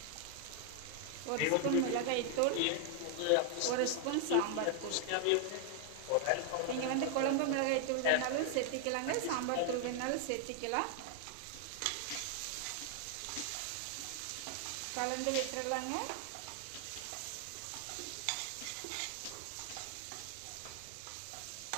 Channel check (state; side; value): different; both; correlation 0.00